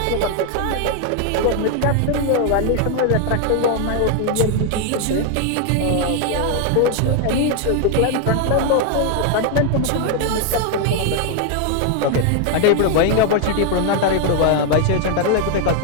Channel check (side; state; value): both; different; correlation 0.00